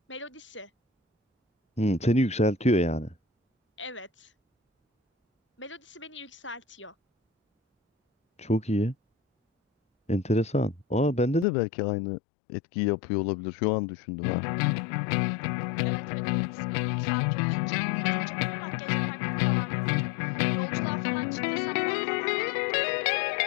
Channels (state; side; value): drops out; right; at 11.5 s